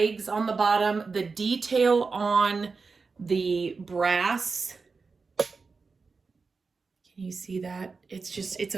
on the bottom, the detail on the brass. Can you see that? It's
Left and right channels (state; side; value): quieter; left; 4.5 dB